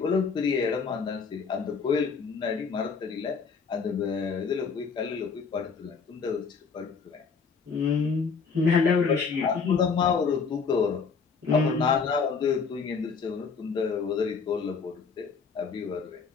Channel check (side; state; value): right; quieter; 5.4 dB